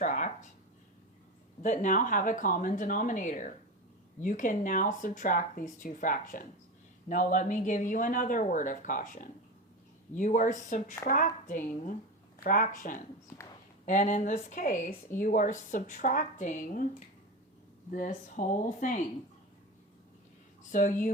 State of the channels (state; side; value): normal; both; correlation 0.23